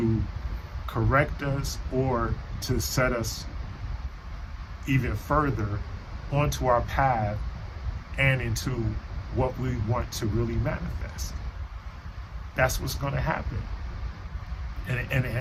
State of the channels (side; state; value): both; identical; correlation 1.00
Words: correct us or to set us even further onto our path and into what we want to really manifest. That's what's going to happen.